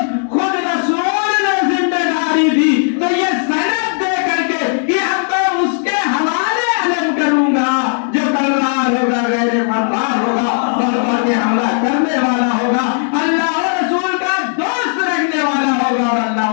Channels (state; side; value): silent; right; 58 dB below the other